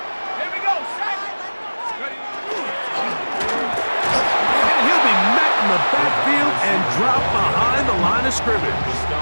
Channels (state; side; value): inverted; both; correlation -1.00